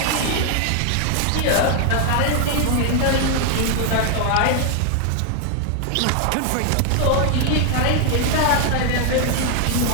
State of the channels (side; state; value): both; different; correlation 0.00